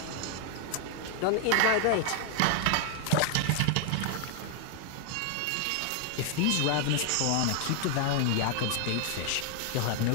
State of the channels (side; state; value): both; different; correlation 0.00